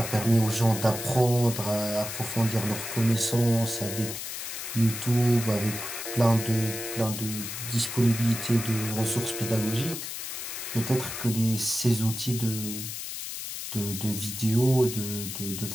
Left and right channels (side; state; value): left; noise; hiss, 7 dB below the sound